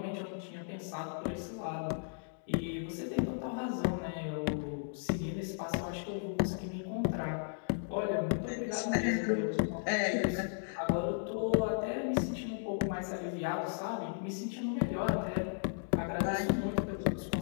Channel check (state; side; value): silent; right; digital silence